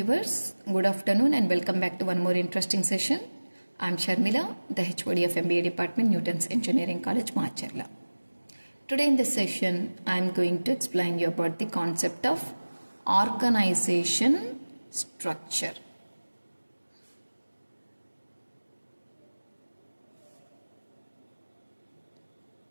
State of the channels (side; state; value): both; inverted; correlation -1.00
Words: good afternoon and welcome back to one more interesting session. I am Sharmila, the HOD of MBA Department, Newton's Engineering College, Macherla. Today in this session, I am going to explain you about the concept of organization structure.